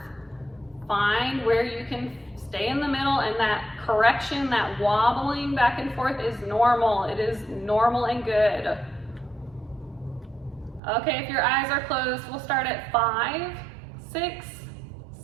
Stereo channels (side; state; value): left; drops out; at 10.8 s